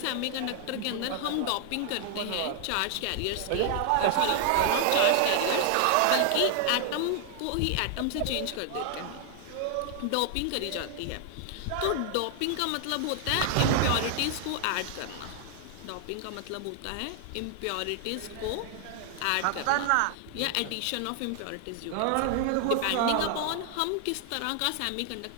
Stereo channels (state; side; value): different; both; correlation 0.00